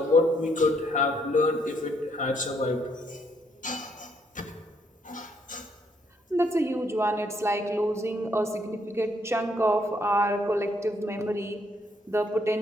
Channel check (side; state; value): both; normal; correlation 0.71